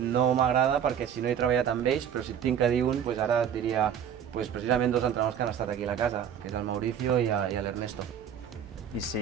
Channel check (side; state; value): left; quieter; 8.6 dB